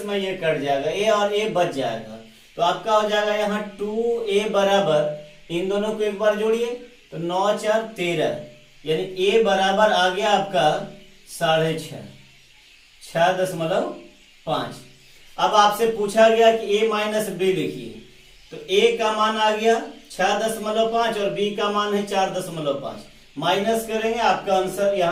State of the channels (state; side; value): identical; both; correlation 1.00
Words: में ये कट जाएगा, a और a बच जाएगा। तो आपका हो जाएगा यहाँ 2a बराबर, इन दोनों को एक बार जोड़िए तो 9 4 13, यानी a बराबर आ गया आपका 6.5। 6.5। अब आपसे पूछा गया कि a माइनस बी लिखिए, तो a का मान आ गया 6.5 और b का मान है 4.5। माइनस करेंगे, आपका आंसर